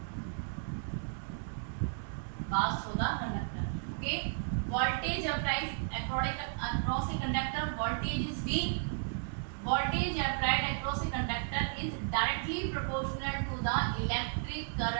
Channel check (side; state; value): left; silent; 55 dB below the other